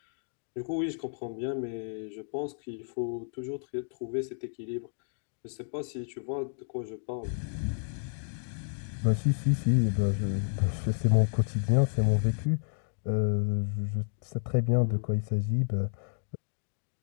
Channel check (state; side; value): silent; right; digital silence